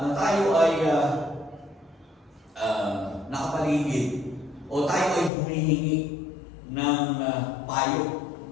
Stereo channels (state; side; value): drops out; right; at 5.3 s